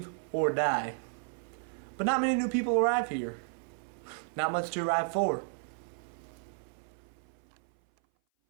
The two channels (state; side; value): silent; left; 56 dB below the other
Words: or die. But not many new people arrive here. Not much to arrive for.